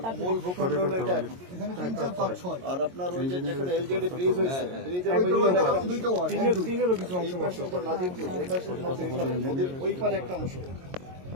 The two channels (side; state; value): left; late; 22 ms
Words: মূল ভূখণ্ড হলো এটা এখন। আর আপনার ওই যে যেখানে এলজেডি ব্রিজ হয়েছে, ব্রিজের নাজিরপুর, এই পাশে নদীর ওই পারে একটা অংশ।